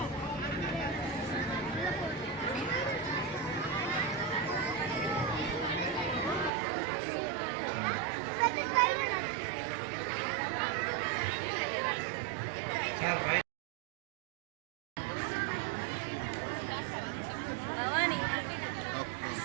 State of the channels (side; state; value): left; drops out; at 6.5 s